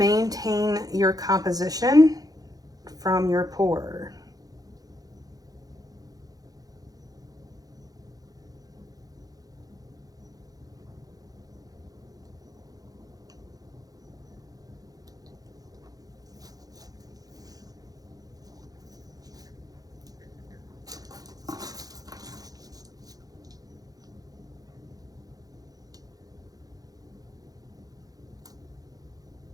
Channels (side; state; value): left; late; 0.18 ms